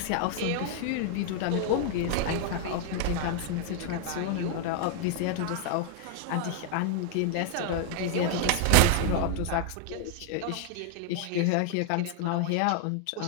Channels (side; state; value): both; different; correlation 0.00